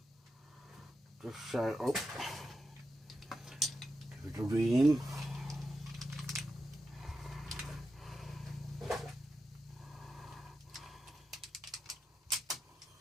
just show up. Give it a ream.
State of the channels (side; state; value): both; normal; correlation 0.88